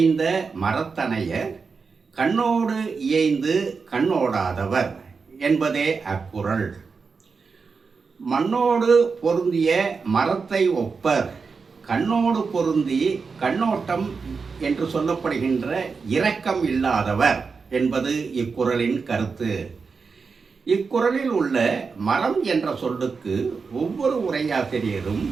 மரத்தனையர் கண்ணோடு இயைந்து கண்ணோடாதவர் என்பதே அக்குறள். மண்ணோடு பொருந்திய மரத்தை ஒப்பர், கண்ணோடு பொருந்தி கண்ணோட்டம் என்று சொல்லப்படுகின்ற இரக்கம் இல்லாதவர் என்பது இக்குறளின் கருத்து. இக்குறளில் உள்ள மரம் என்ற சொல்லுக்கு ஒவ்வொரு உரையாசிரியரும்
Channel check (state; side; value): quieter; left; 5.0 dB